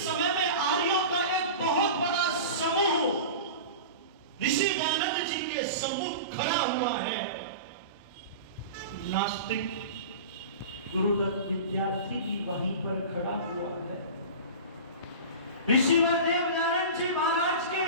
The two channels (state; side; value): inverted; both; correlation -0.33